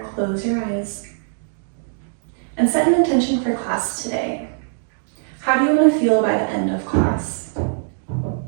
close your eyes, and set an intention for class today. How do you want to feel by the end of class?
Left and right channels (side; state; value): left; silent; digital silence